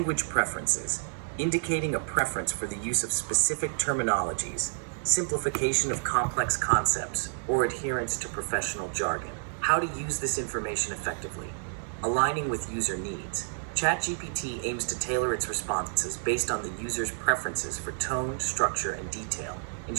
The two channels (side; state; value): left; silent; 58 dB below the other